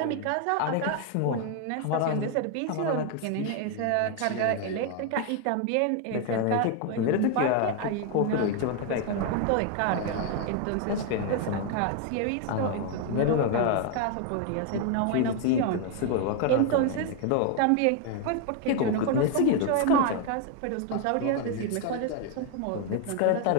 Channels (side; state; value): both; different; correlation 0.01